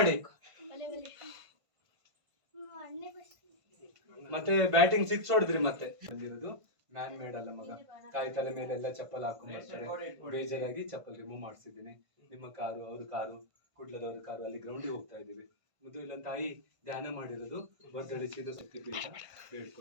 ಮತ್ತೆ ಬ್ಯಾಟಿಂಗ್ 6 ಹೊಡೆದ್ರಿ ಮತ್ತೆ. ಬಂದಿರೋದು ಮ್ಯಾನ್ ಮೇಡ್ ಅಲ್ಲ ಮಗ, ತಾಯಿ ತಲೆ ಮೇಲೆ ಎಲ್ಲ ಚಪ್ಪಲ್ ಹಾಕೊಂಡು ಬರ್ತಾರೆ. ಬೇಜಾರಾಗಿ ಚಪ್ಪಲ್ ರಿಮೂವ್ ಮಾಡಿಸಿದ್ದೀನಿ. ನಿಮ್ಮ ಕಾರು, ಅವ್ರ ಕಾರು, ಕುಡ್ಲದವ್ರ ಕಾರು, ಅಲ್ಲಿ ಗ್ರೌಂಡಿಗೆ ಹೋಗ್ತಾ ಇದ್ದೀವಿ. ಮುದ್ದು ಇಲ್ಲ ತಾಯಿ ಧ್ಯಾನ ಮಾಡಿರೋದು, ಬರ್ದಳಿಸಿದ ಶಕ್ತಿಪೀಠ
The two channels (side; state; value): left; late; 1.5 ms